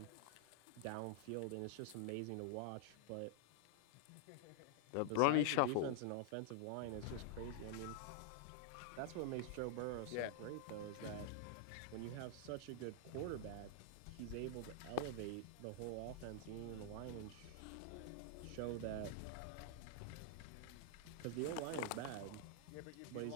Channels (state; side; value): different; both; correlation -0.01